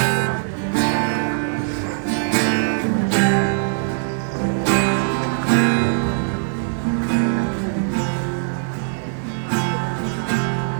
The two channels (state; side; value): silent; left; digital silence